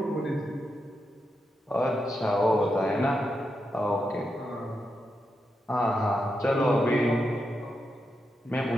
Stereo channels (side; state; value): both; normal; correlation 0.86